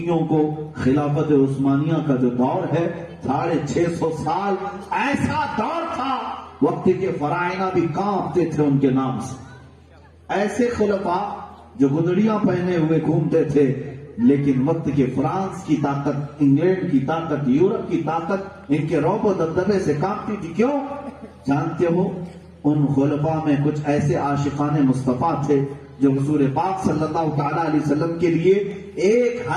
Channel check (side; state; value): both; identical; correlation 1.00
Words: کو خلافت عثمانیہ کا جو دور ہے 650 سال ایسا دور تھا وقت کے فرائض بھی کانپتے تھے ان کے نام سے۔ ایسے خلفاء جو گدڑیاں پہنے ہوئے گھومتے تھے، لیکن وقت کے فرانس کی طاقت، انگلینڈ کی طاقت، یورپ کی طاقت ان کے رعب و دبدبے سے کانپتی تھی۔ کیوں؟ جانتے ہو ان خلفاء میں کچھ ایسے عاشقان مصطفیٰ تھے جو حضور پاک صلی اللہ تعالی علیہ وسلم کے لیے ایک